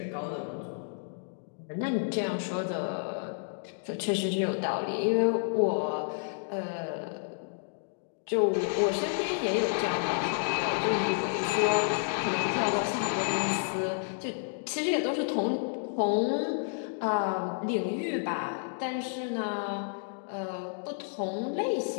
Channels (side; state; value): right; silent; digital silence